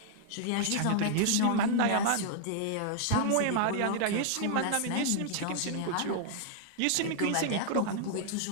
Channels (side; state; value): both; different; correlation 0.00